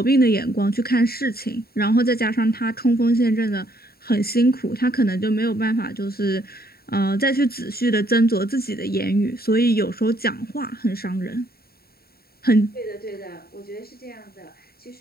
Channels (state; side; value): late; right; 0.45 ms